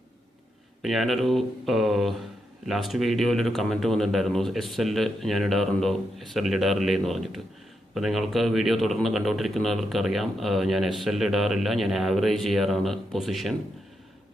ഇപ്പോൾ ഞാനൊരു ലാസ്റ്റ് വീഡിയോയിലൊരു കമൻറ്റ് വന്നിട്ടുണ്ടായിരുന്നു, SL ഞാൻ ഇടാറുണ്ടോ, SL ഇടാറില്ലേ എന്ന് പറഞ്ഞിട്ട്. അപ്പോൾ നിങ്ങൾക്ക് വീഡിയോ തുടർന്ന് കണ്ടുകൊണ്ടിരിക്കുന്നവർക്കറിയാം, ഞാൻ SL ഇടാറില്ല. ഞാൻ ആവറേജ് ചെയ്യാറാണ് പൊസിഷൻ.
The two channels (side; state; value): both; normal; correlation 0.83